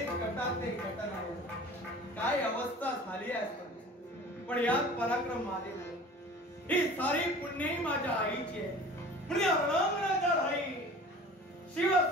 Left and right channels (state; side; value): normal; both; correlation 0.42